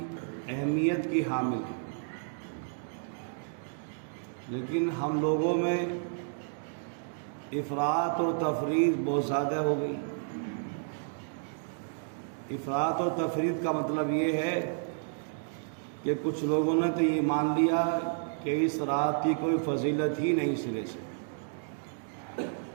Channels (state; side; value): silent; left; digital silence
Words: اہمیت کی حامل ہے، لیکن ہم لوگوں میں افراط اور تفریط بہت زیادہ ہو گئی۔ افراط اور تفریط کا مطلب یہ ہے کہ کچھ لوگوں نے تو یہ مان لیا کہ اس رات کی کوئی فضیلت ہی نہیں، سرے سے